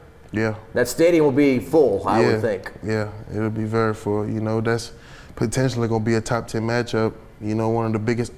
Yeah. That stadium will be full, I would think. Yeah, it'll be very full. That's potentially going to be a top 10 matchup. One of the biggest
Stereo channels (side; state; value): both; identical; correlation 1.00